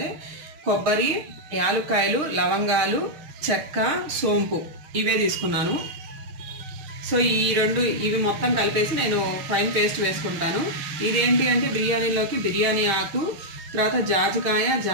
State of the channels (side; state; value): left; late; 6.4 ms